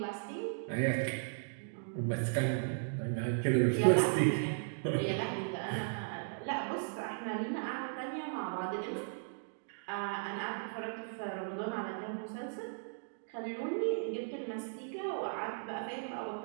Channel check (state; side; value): silent; left; digital silence